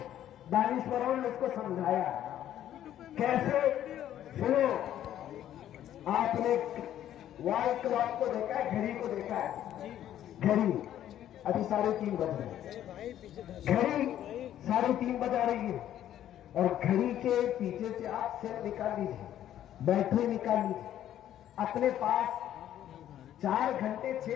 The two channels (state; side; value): quieter; right; 11.5 dB